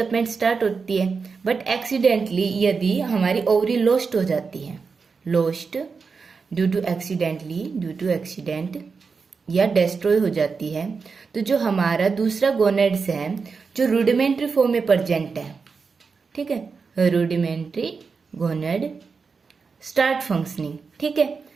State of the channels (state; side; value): quieter; left; 5.1 dB